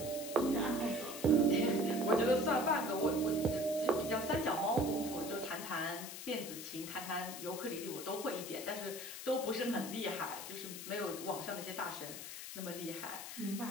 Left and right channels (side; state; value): left; noise; hiss, 9 dB below the sound